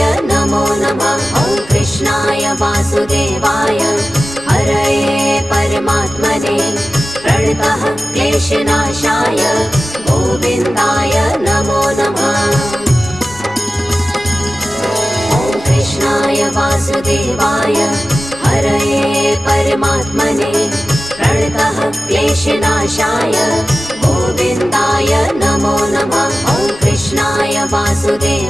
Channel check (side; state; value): left; noise; rumble, 24 dB below the sound